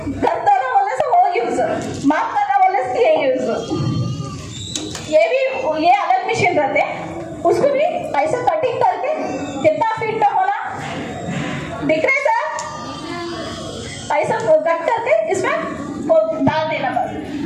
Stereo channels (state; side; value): identical; both; correlation 1.00